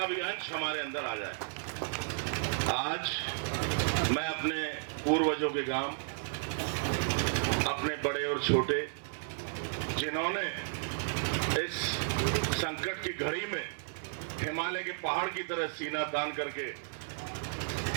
भी अंश हमारे अंदर आ जाए। आज मैं अपने पूर्वजों के गांव, अपने बड़े और छोटे, जिन्होंने इस संकट की घड़ी में हिमालय के पहाड़ की तरह सीना तान करके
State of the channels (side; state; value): left; silent; 56 dB below the other